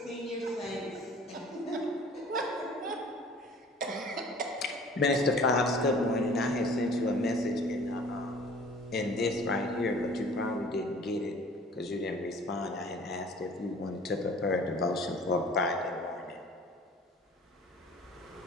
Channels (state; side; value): normal; both; correlation 0.49